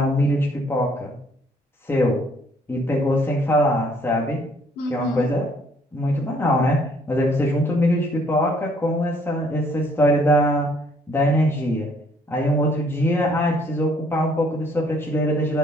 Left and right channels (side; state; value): both; normal; correlation 0.64